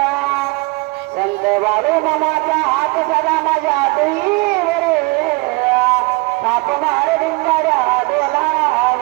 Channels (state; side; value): quieter; left; 26.6 dB